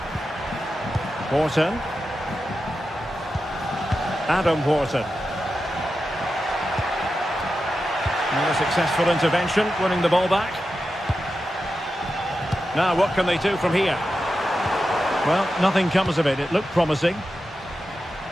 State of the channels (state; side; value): normal; both; correlation 0.90